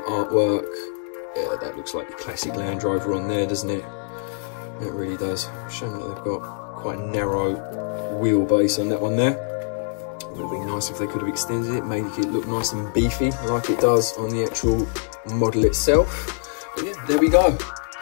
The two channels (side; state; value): right; silent; digital silence